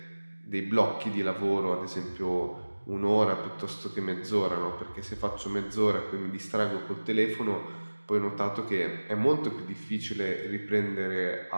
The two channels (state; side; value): inverted; both; correlation -1.00